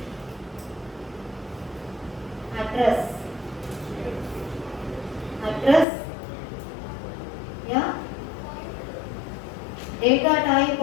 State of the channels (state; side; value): drops out; right; at 5.9 s